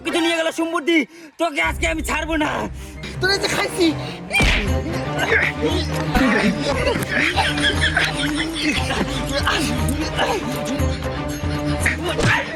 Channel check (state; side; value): identical; both; correlation 1.00